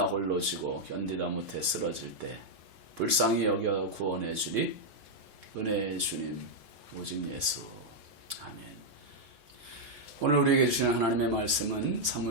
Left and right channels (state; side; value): late; left; 3.8 ms